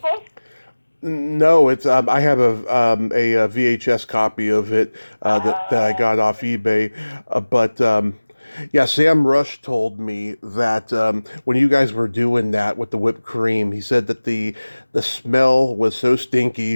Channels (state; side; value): inverted; both; correlation -1.00